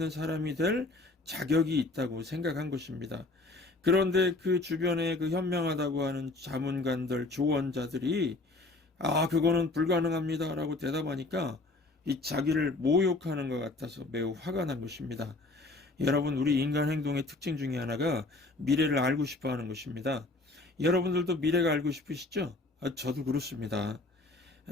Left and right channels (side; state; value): right; quieter; 3.1 dB